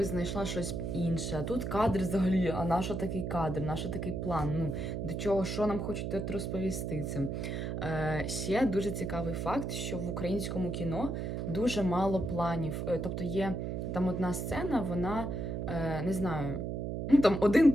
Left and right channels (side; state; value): right; noise; hum, 3 dB below the sound